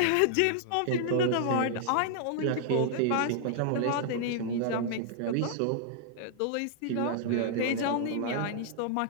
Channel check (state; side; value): different; both; correlation -0.01